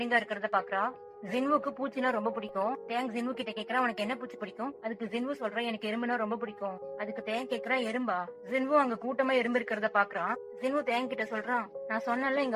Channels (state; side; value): identical; both; correlation 1.00